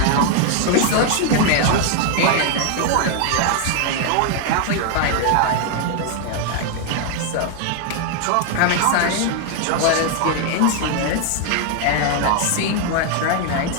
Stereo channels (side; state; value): both; different; correlation 0.00